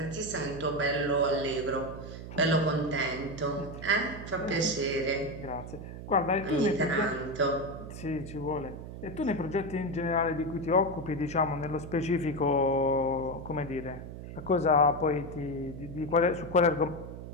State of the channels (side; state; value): right; noise; hum, 10 dB below the sound